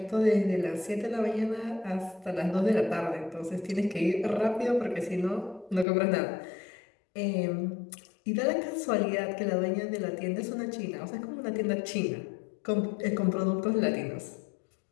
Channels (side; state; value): right; drops out; at 5.9 s